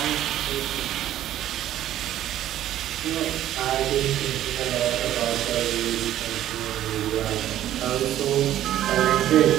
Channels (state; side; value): quieter; left; 12.5 dB